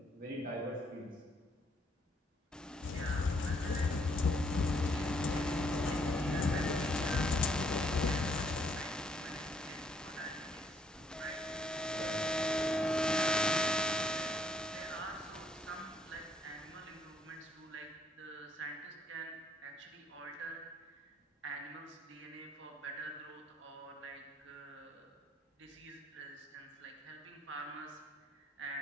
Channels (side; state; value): both; normal; correlation 0.69